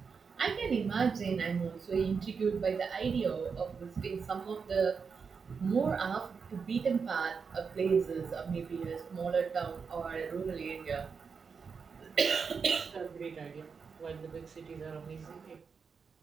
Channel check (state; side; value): quieter; left; 5.6 dB